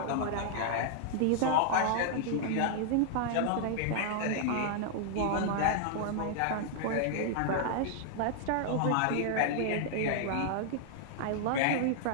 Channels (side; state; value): both; different; correlation -0.01